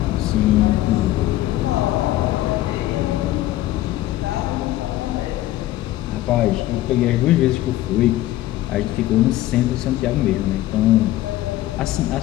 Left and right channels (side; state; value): right; quieter; 15.2 dB